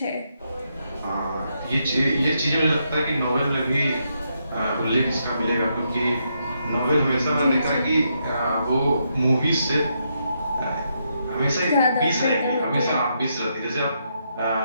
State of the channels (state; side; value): inverted; both; correlation -0.79